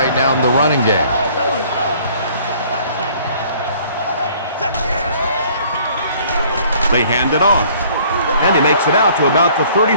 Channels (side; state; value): both; inverted; correlation -0.56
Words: now in the running game. They hand it off. And he makes it out to about the